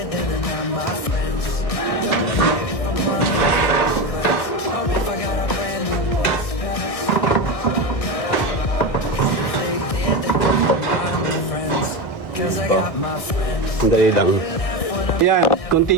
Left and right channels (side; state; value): right; late; 1.6 ms